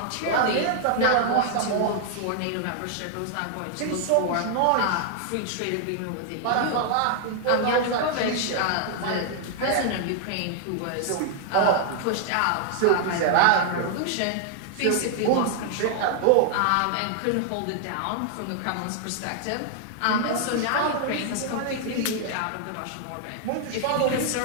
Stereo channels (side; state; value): both; different; correlation 0.00